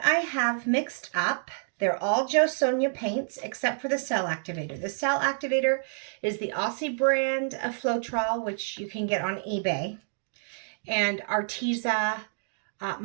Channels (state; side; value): silent; left; digital silence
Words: I have mixed up, they're all JoSonja paints except for the cell activator. The cell activator is the Aussie brand of Floetrol, which you can get on eBay, and Arteza